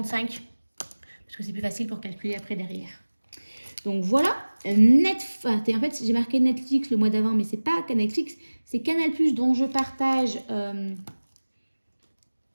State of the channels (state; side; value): inverted; both; correlation -1.00